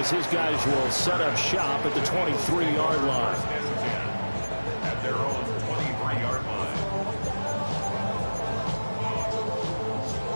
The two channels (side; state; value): both; inverted; correlation -1.00